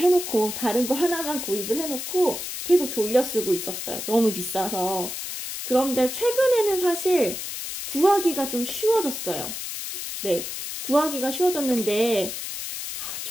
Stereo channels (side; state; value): left; noise; hiss, 6 dB below the sound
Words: 다른 거 하나만 구입을 해놓고 계속 돌려 쓰고 있었어요. 너무 비싸서. 그런데 최근에는 사실 구하기가 좀 쉬워졌어요. 네, 구하기가 쉬워졌는데